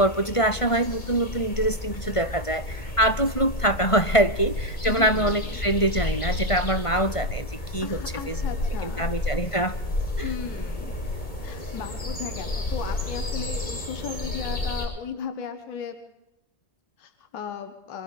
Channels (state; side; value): late; right; 1.5 ms